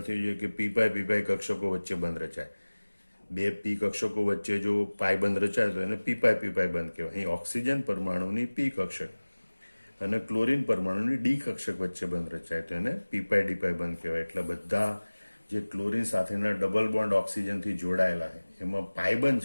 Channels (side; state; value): both; inverted; correlation -1.00